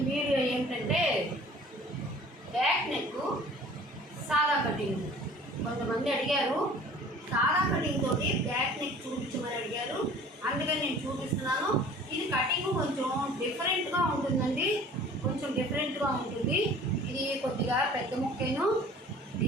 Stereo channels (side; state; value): both; normal; correlation 0.48